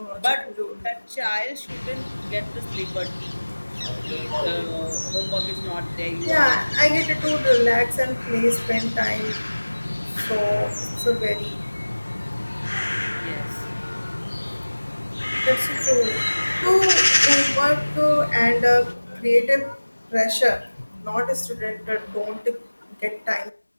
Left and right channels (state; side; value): inverted; both; correlation -1.00